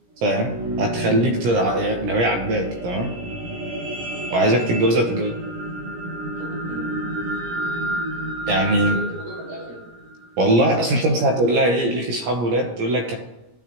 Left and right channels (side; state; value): left; late; 17 ms